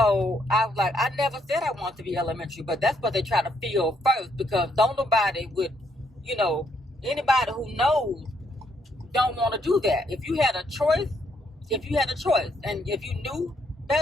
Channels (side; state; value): both; normal; correlation 0.73